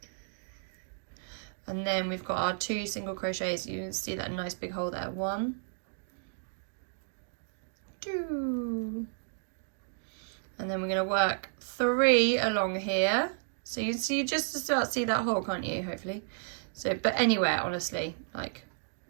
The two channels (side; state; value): left; silent; digital silence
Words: And then we've got our 2 single crochets. You can see that nice big hole there. 1, 2. And then we're going to work 3 along here. So you see, just about see that hole, can't you? Hopefully. So, but anywhere, honestly, like